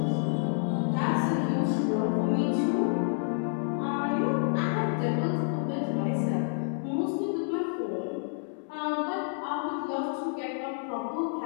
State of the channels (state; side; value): silent; right; 58 dB below the other